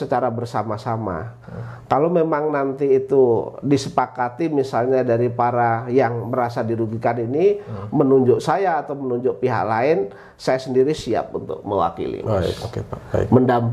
bersama-sama. Kalau memang nanti itu disepakati misalnya dari para yang merasa dirugikan ini menunjuk saya atau menunjuk pihak lain, saya sendiri siap untuk mewakili, Mas. Baik.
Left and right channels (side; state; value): both; identical; correlation 1.00